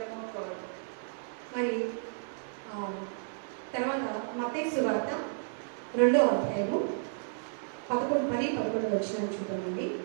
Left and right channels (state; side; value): silent; left; digital silence